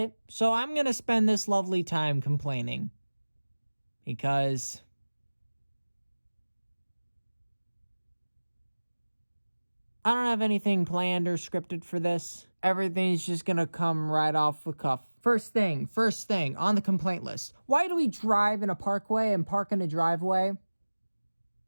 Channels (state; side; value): inverted; both; correlation -1.00